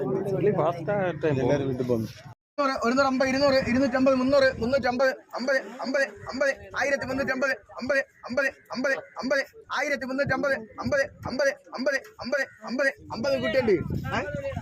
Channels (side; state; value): both; identical; correlation 1.00